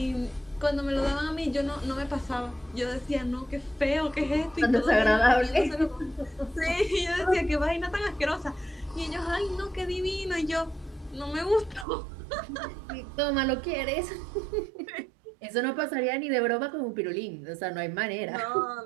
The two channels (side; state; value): left; drops out; at 11.9 s